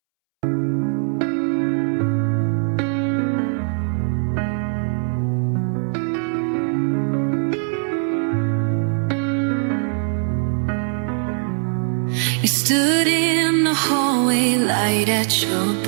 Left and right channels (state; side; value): silent; left; 65 dB below the other